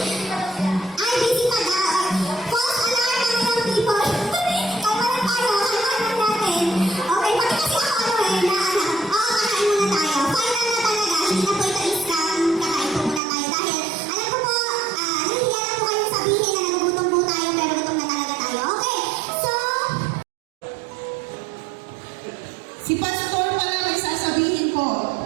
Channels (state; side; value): drops out; left; at 13.2 s